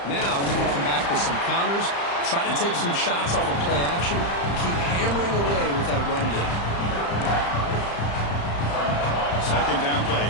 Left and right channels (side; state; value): right; late; 35 ms